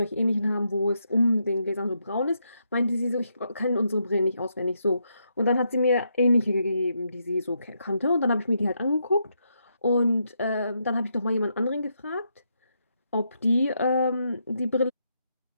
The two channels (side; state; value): both; inverted; correlation -0.80